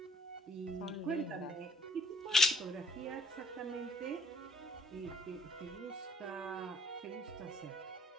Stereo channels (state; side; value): normal; both; correlation 0.61